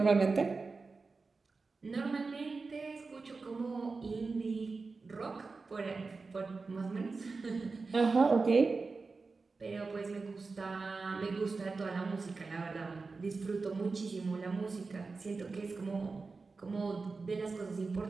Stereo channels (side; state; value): left; quieter; 4.2 dB